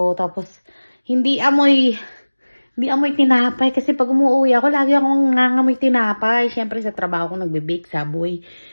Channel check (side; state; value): both; inverted; correlation -1.00